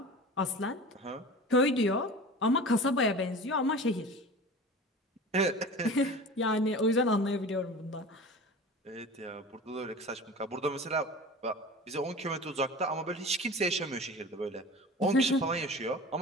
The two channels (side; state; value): both; normal; correlation 0.36